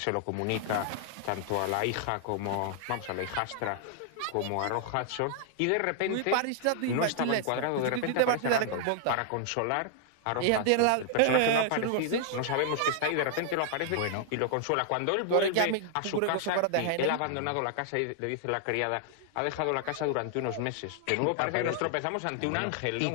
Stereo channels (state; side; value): different; both; correlation 0.00